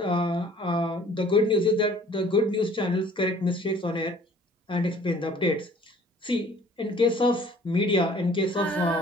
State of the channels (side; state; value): both; normal; correlation 0.53